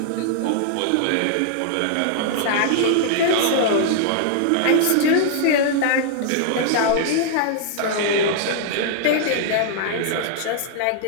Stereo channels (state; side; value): different; both; correlation -0.01